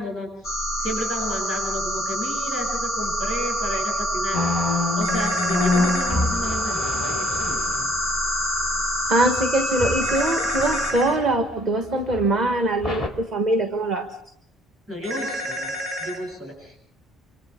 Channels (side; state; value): both; normal; correlation 0.61